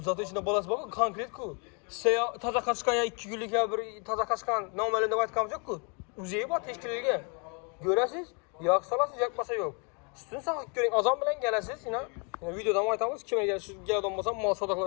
Zaten içinde balası bak, konkret ku. Size taza kaçkan ya 2 günlük ya bir taza kaçkan normalinde aytganimiz yok ku. Uzeyi bor teşkilligiga. Görasiz, yoq salasiz, yakmasa yok. Üstünü saqlab ko'ring, azon bilan kelasiz, videodan aytamiz, kimga keladigan bo'lsa, mol savdo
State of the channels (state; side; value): quieter; right; 35.6 dB